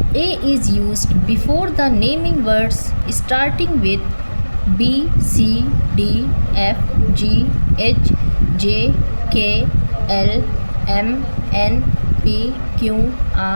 A is used before the naming words starting with B, C, D, F, G, H, J, K, L, M, N, P, Q,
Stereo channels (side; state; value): both; inverted; correlation -1.00